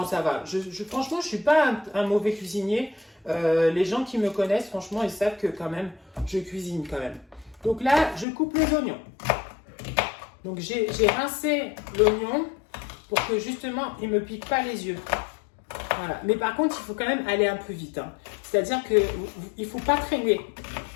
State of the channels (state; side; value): drops out; right; at 8.2 s